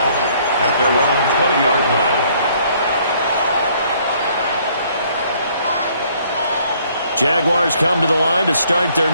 their own 20-yard line. Jaguars come to the line to start their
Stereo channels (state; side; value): inverted; both; correlation -0.63